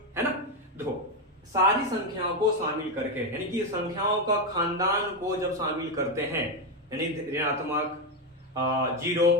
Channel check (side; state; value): both; normal; correlation 0.08